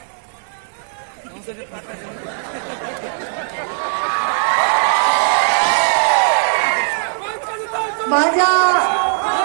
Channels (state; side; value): silent; left; digital silence